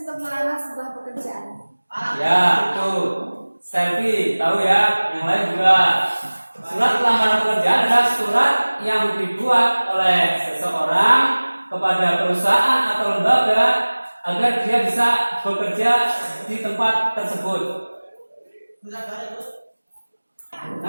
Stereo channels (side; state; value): both; inverted; correlation -1.00